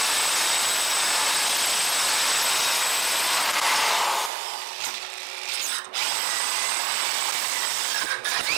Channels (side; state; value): left; drops out; at 4.3 s